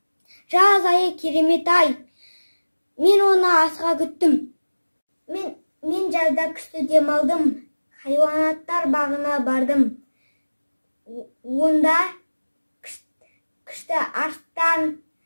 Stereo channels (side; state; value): both; inverted; correlation -1.00